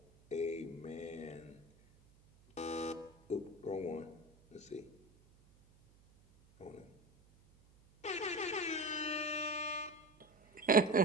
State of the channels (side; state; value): right; noise; hum, 28 dB below the sound